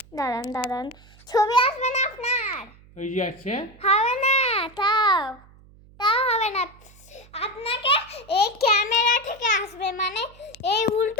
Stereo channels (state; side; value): noise; right; hum, 25 dB below the sound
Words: দাঁড়ান, ছবি আসবে না আপনার। ওই যে আছে, হবে না, তাও হবে না। আপনাকে এই ক্যামেরা থেকে আসবে, মানে এই